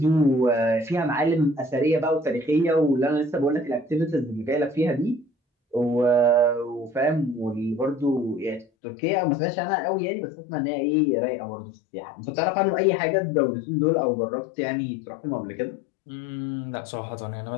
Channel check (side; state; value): right; drops out; at 8.7 s